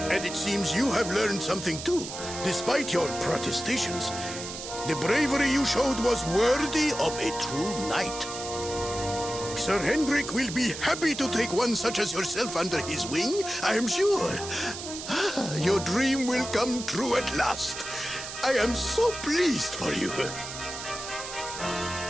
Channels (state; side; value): noise; right; hiss, 9 dB below the sound